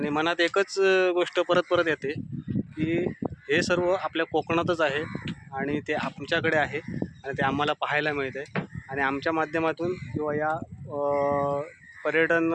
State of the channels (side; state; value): both; identical; correlation 1.00